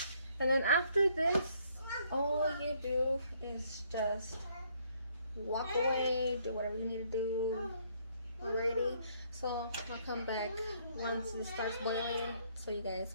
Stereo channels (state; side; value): inverted; both; correlation -0.67